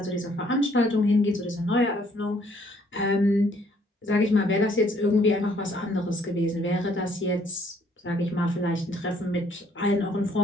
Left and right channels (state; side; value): normal; both; correlation 0.64